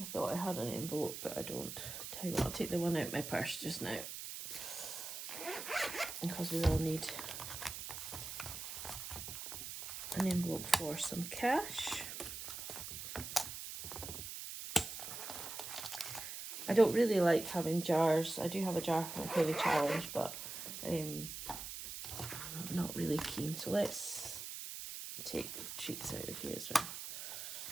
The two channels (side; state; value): right; noise; hiss, 7 dB below the sound